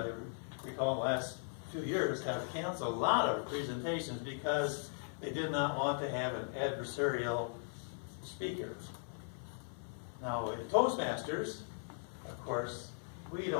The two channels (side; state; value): right; silent; 52 dB below the other